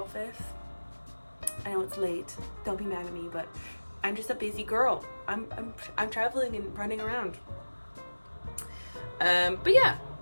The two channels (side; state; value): both; inverted; correlation -1.00